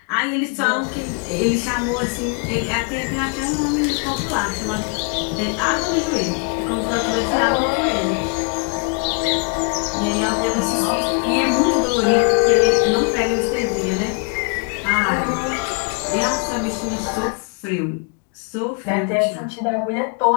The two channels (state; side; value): quieter; right; 37.6 dB